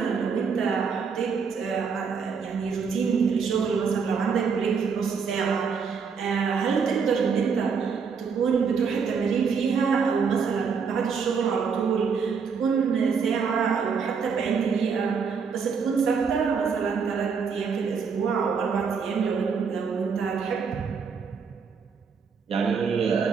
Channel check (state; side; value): quieter; left; 5.9 dB